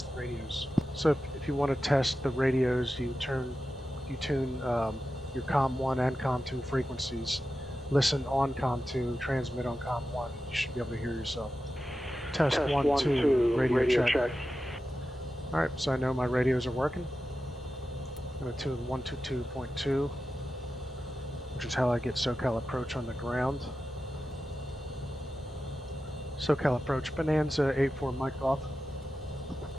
the radios. So if you want to test the radios, you tune your COM 1 and COM 2 frequencies, listen on COM 2, transmit on COM 1. You should be able to hear yourself. Test 1, 2, radio check. Alright, so I know my radios are working. I'm going to tune 122.2, which is how I get SoCal approach on the ground. SoCal approach, Bonanza 84 mic off.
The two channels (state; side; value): normal; both; correlation 0.92